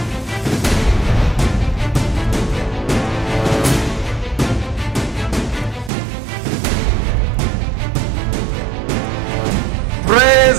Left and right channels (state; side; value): drops out; left; at 5.9 s